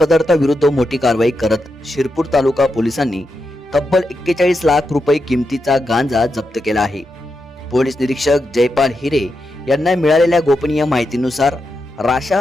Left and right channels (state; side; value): normal; both; correlation 0.86